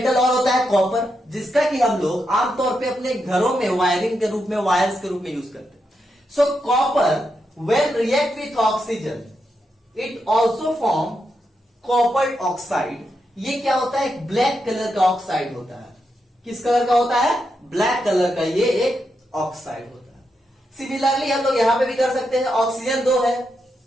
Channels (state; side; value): normal; both; correlation 0.84